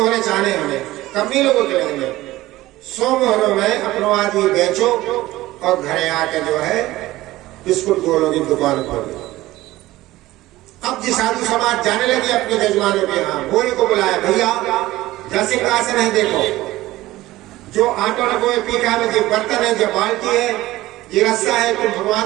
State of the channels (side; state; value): left; quieter; 17.1 dB